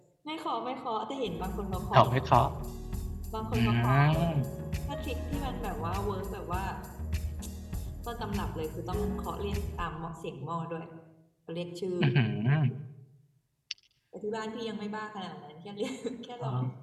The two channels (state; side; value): identical; both; correlation 1.00